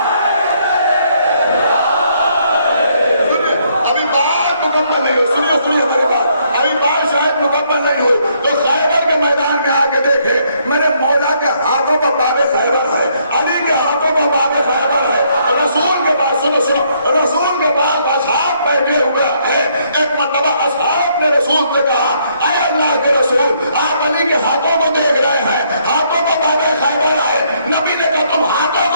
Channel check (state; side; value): inverted; both; correlation -0.70